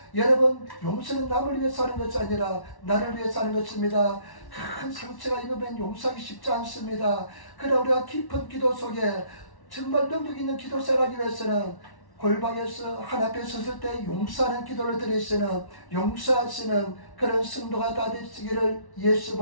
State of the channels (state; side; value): late; right; 1.1 ms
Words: 여러분, 용서는 남을 위해서 하는 것이 아니라 나를 위해서 하는 것입니다. 큰 상처가 입으면 용서하기 쉽지 않습니다. 그러나 우리가 깊은 기도 속에 정말 능력 있는 기도 생활하기 위해서는 골방에서 하나님께 섰을 때 용서하는 기도를 드리시는, 용서하시는 그런 성도가 다 되시기를